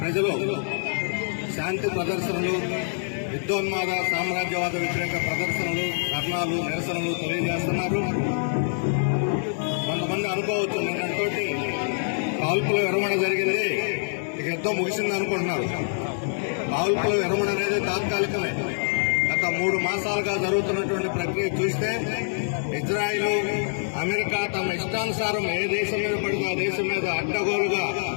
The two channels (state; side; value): silent; right; digital silence